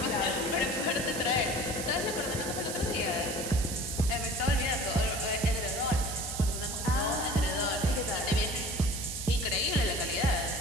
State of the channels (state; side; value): noise; right; hiss, 6 dB below the sound